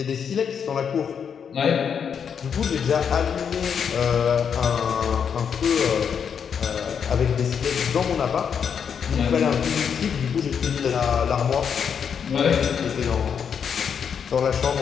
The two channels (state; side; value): quieter; right; 7.3 dB